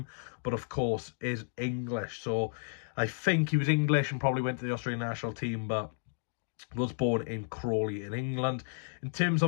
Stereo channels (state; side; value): silent; right; digital silence